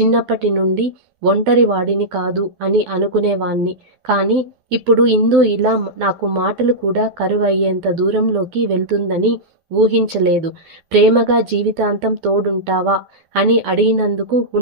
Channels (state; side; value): late; left; 12 ms